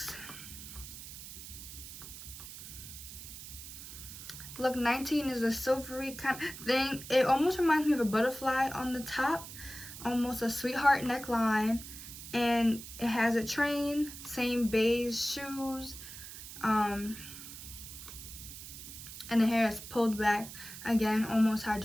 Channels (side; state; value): right; noise; hiss, 12 dB below the sound